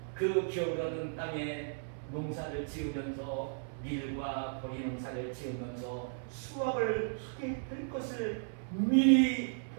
그 기업으로는 땅에 농사를 지으면서 밀과 보리 농사를 지으면서 수확을 하게 될 것을 미리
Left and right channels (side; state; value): left; silent; 54 dB below the other